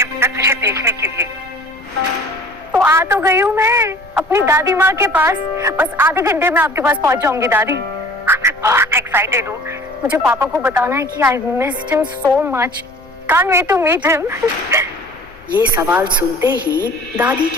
बेटा तुझे देखने के लिए। तो आ तो गई हूँ मैं अपनी दादी माँ के पास। बस आधे घंटे में आपके पास पहुँच जाऊंगी दादी। मैं बहुत एक्साइटेड हूँ। मुझे पापा को बताना है कि I missed him so much. Can't wait to meet him. ये सवाल सुनते ही दादी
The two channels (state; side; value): noise; left; rumble, 27 dB below the sound